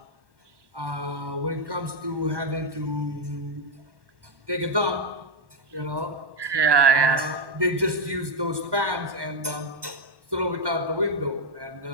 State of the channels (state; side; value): late; left; 1.1 ms